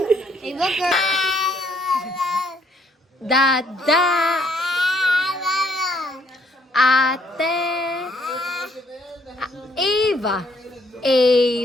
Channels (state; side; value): normal; both; correlation 0.67